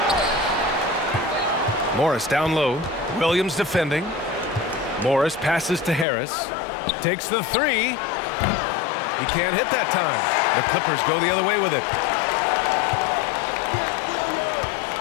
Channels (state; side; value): drops out; right; at 6.1 s